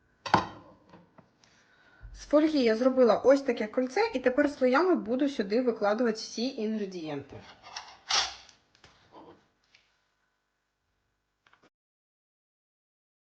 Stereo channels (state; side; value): identical; both; correlation 1.00